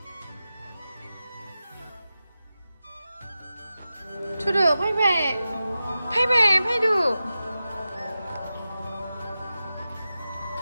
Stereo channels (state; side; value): inverted; both; correlation -0.93